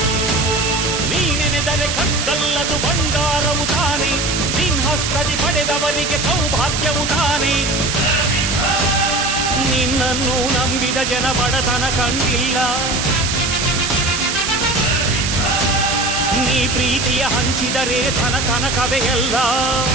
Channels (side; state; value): right; noise; hiss, 1 dB below the sound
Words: ನೀನೆನೆದರೆ ಕಗ್ಗಲ್ಲದು ಬಂಗಾರವು ತಾನೆ, ನಿನ್ಹಸ್ತದಿ ಪಡೆದವರಿಗೆ ಸೌಭಾಗ್ಯವು ತಾನೆ. ನಿನ್ನನ್ನು ನಂಬಿದ ಜನ ಬಡತನ ಕಂಡಿಲ್ಲ, ನೀ ಪ್ರೀತಿಯ ಹಂಚಿದರೆ ಧನ ಕನಕವೇ ಎಲ್ಲ.